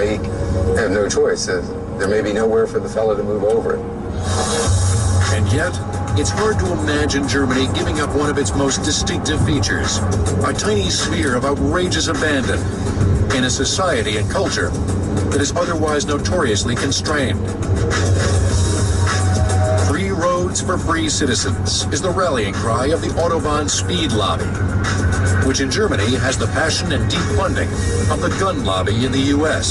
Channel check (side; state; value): both; identical; correlation 1.00